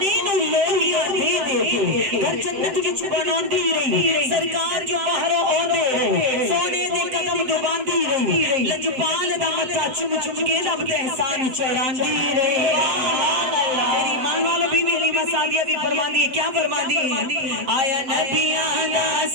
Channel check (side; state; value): left; late; 7.8 ms